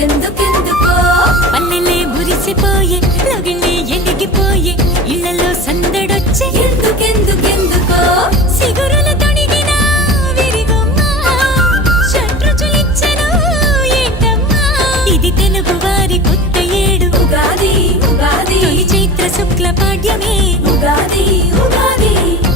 పల్లెలే మురిసిపోయే లగిలే ఎలిగిపోయే ఇళ్లలో సందడొచ్చే ఎందుకెందుకెందుకో సిగురుల తొడిగిన విరిగొమ్మ షట్రుచులిచ్చెను ఏంటమ్మా ఇది తెలుగు వారి కొత్త ఏడు ఉగాది ఉగాది తొలి చైత్ర శుక్ల పాడ్యమే ఉగాది ఉగాది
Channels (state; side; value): normal; both; correlation 0.35